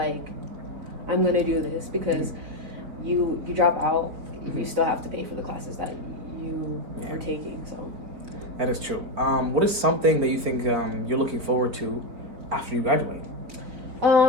I'm going to do this, because you drop out, you still have to pay for the classes that you are taking. So that is true. What is something that you think you're looking forward to after you graduate?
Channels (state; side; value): late; left; 4.6 ms